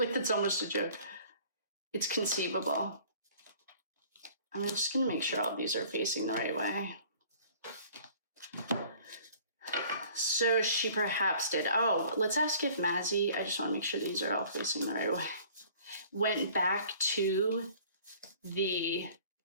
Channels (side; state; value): both; inverted; correlation -0.51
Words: that's almost a joke. It's conceivable. I'm just going to make sure all these are facing the right way. So she perhaps did. Oh, let's ask if Maizie, I just want to make sure these are all facing the right way, went back to the